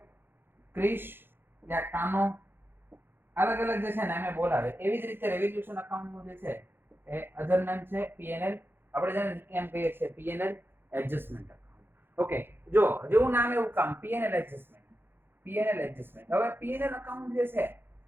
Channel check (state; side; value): late; left; 0.10 ms